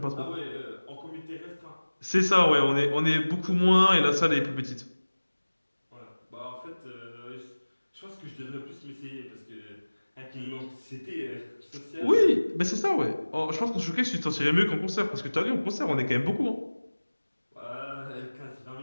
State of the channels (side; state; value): both; inverted; correlation -1.00